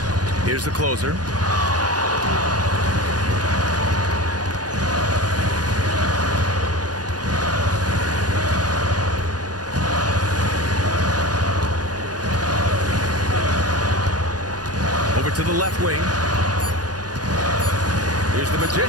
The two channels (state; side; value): late; left; 0.69 ms